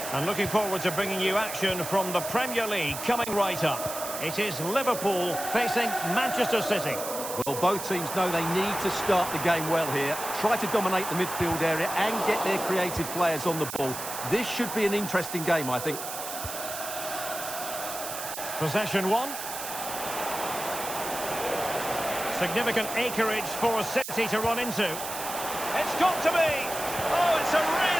And looking forward to bringing you action from the Premier League coming right up. It is Liverpool facing Manchester City. Well, both teams know they need to start the game well here. Try to dominate the midfield area and get their creative players on the ball. This should be an interesting game, I think. Possession one. Significant acreage for City to run into. It's got to be! Oh, it's a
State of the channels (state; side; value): noise; right; hiss, 7 dB below the sound